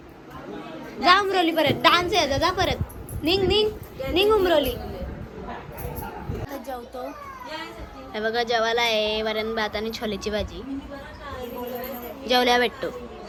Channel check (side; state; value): both; identical; correlation 1.00